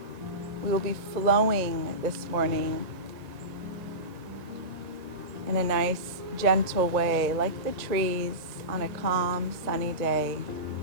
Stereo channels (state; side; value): late; left; 1.8 ms